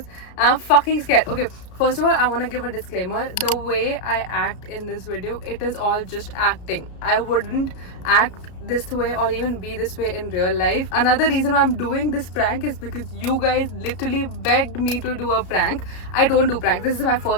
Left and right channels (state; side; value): late; right; 33 ms